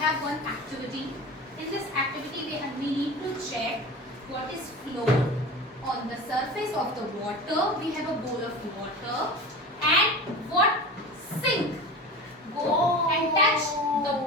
one activity. In this activity, we need to check what is flow on the surface of the water. We have a bowl of water, and what sink go and touch the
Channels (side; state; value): both; normal; correlation 0.32